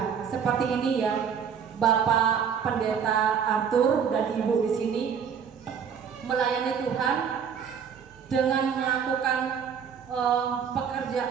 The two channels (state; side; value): quieter; left; 7.2 dB